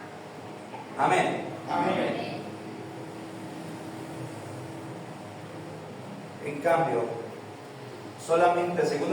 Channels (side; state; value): both; identical; correlation 1.00